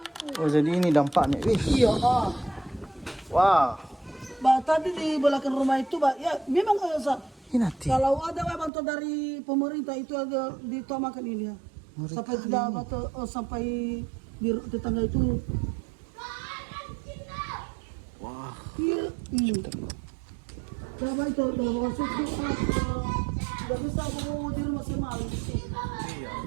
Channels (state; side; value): drops out; left; at 8.7 s